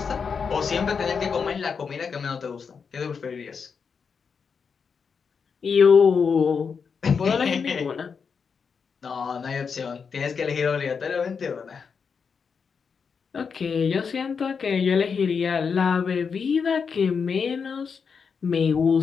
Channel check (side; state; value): right; quieter; 5.9 dB